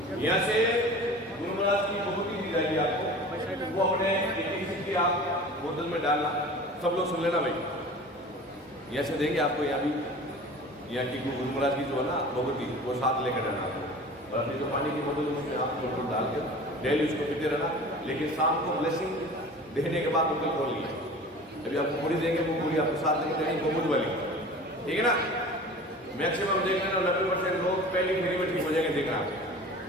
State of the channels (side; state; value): both; normal; correlation 0.40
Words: यहाँ से गुरु महाराज की बहुत ही जाएगी आपको, वो अपने की आप बोतल में डालना। सब लोग सुन लेना भाई, यहाँ से देंगे आपको। यहाँ भी यहाँ की गुरु महाराज की जो है ना भगवती, वो साथ लेकर रहना आपको। और अपनी जो पानी की बोतल उसमें आप बोतल डाल के डेली उसको पीते रहना। लेकिन शाम को ब्लेसिंग देने के बाद बोतल खोल लीजिए। अभी आपको पूरी देंगे, वो पूरी आपको साथ लेकर देंगे, वो बुध वाली, ठीक है ना। मैक्सिमम देख लेना 90% लोग पहली फेरी में ठीक हो जाएंगे, देखना